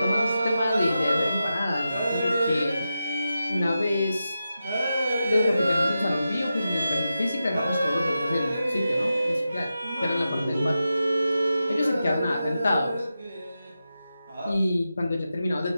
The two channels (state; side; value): inverted; both; correlation -0.90